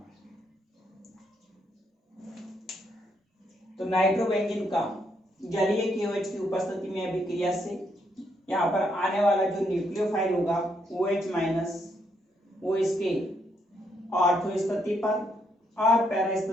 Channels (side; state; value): both; normal; correlation 0.75